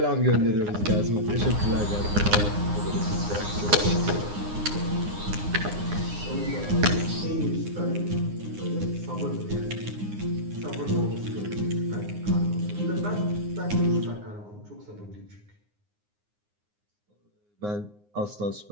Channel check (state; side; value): late; left; 9.7 ms